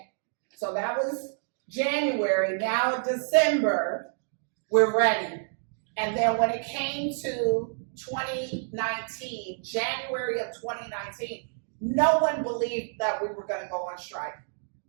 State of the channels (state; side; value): silent; left; digital silence